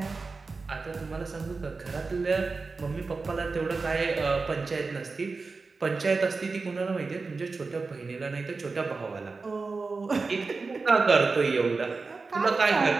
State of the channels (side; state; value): left; quieter; 4.1 dB